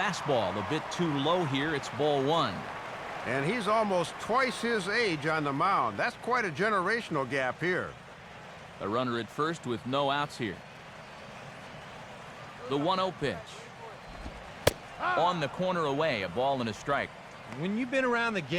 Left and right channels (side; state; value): both; identical; correlation 1.00